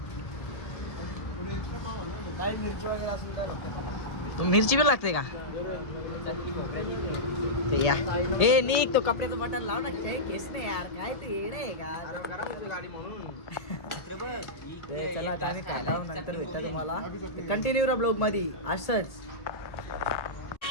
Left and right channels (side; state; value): right; late; 1.7 ms